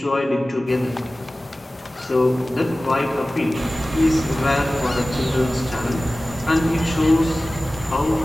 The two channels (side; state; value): both; normal; correlation 0.97